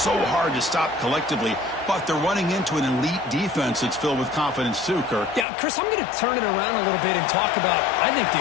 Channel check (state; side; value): drops out; right; at 5.5 s